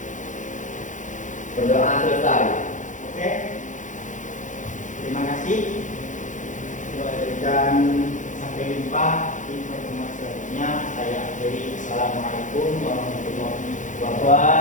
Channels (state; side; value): late; right; 0.36 ms